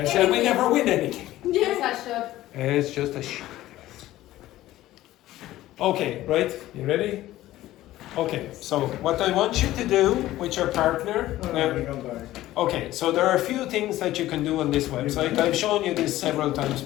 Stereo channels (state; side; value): quieter; right; 15.3 dB